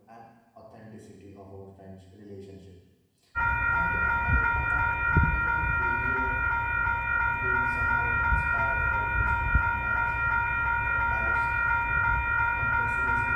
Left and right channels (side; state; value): both; identical; correlation 1.00